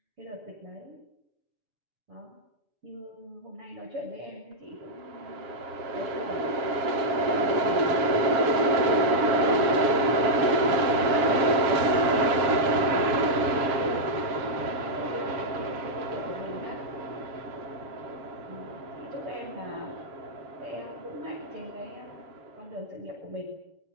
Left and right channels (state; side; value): late; left; 7.5 ms